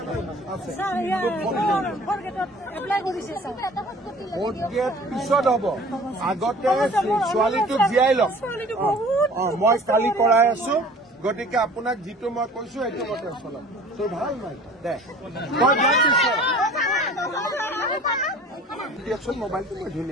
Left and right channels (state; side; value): normal; both; correlation 0.46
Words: ভোট গেট পিছত হ'ব আগতে ছোৱালীটোক জীয়াই লওক মই কালি কৰাই আছো গতিকে আপোনাক যিটো মই কৈছো সেইটো মতে চলাম তোৰ ভাল নাই দে দিয়কচোন মোবাইলটো মই